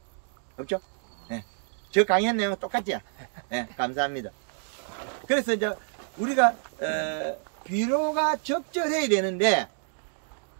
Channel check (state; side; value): silent; left; 59 dB below the other